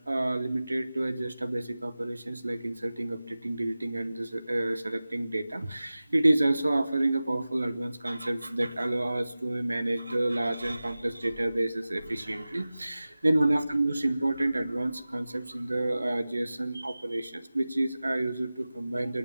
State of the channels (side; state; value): both; inverted; correlation -0.96